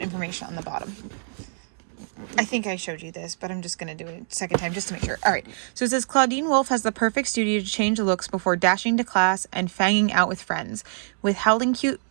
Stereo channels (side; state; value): left; silent; 62 dB below the other